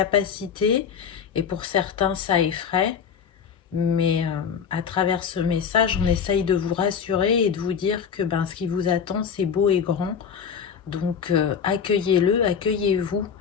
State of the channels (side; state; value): right; quieter; 7.1 dB